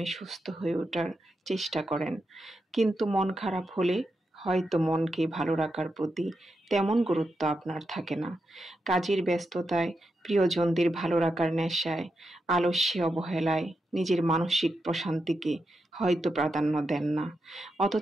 সুস্থ হয়ে ওঠার চেষ্টা করেন। কিন্তু মন খারাপ হলে হয়তো মনকে ভালো রাখার প্রতি তেমন গুরুত্ব আপনার থাকে না। কাজের ব্যস্ততায়, প্রিয়জনদের ভালো রাখার নেশায়, আলস্যে, অবহেলায় নিজের মানসিক প্রশান্তিকে হয়তো প্রাধান্য দেন না।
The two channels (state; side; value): normal; both; correlation 0.86